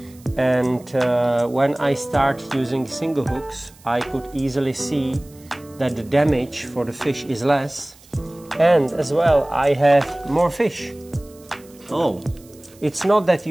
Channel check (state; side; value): noise; right; hiss, 26 dB below the sound